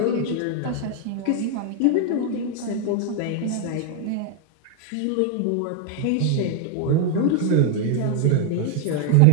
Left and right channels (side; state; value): both; different; correlation 0.00